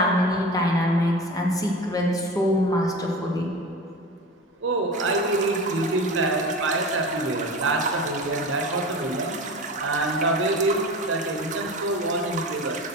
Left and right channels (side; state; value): both; normal; correlation 0.32